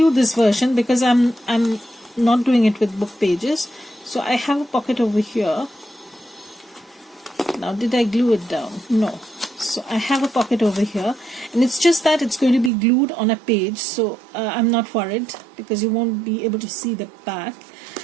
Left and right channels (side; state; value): left; drops out; at 12.7 s